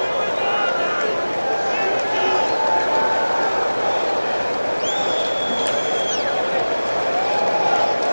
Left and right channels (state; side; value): inverted; both; correlation -1.00